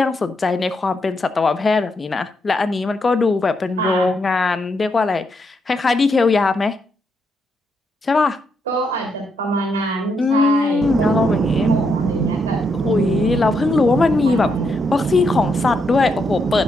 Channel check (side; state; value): both; normal; correlation 0.79